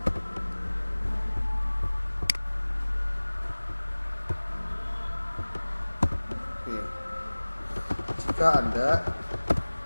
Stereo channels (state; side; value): inverted; both; correlation -1.00